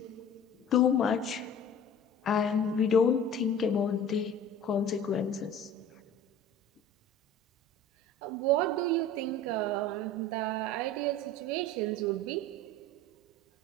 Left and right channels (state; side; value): normal; both; correlation 0.42